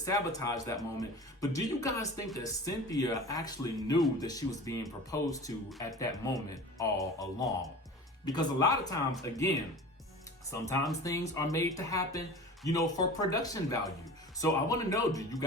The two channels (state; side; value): normal; both; correlation 0.37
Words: that moment, but do you guys think that Cynthia actually knew that she was being proposed to at that moment all along? Because a lot of times, again, sometimes things are made to happen, you know, for production value. So I want to know, do you